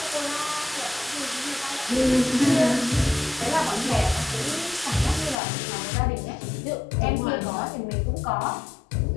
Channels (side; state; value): right; drops out; at 5.4 s